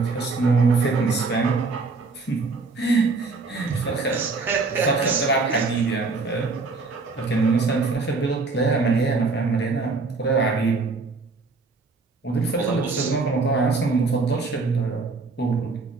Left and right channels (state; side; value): quieter; left; 4.0 dB